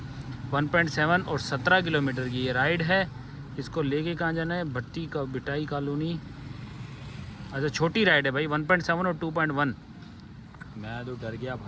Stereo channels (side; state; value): both; identical; correlation 1.00